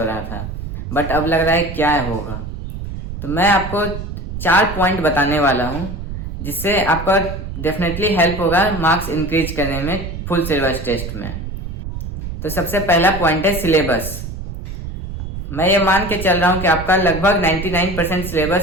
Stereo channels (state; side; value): noise; right; rumble, 7 dB below the sound